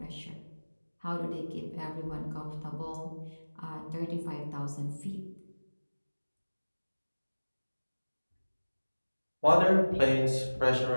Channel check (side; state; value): both; inverted; correlation -1.00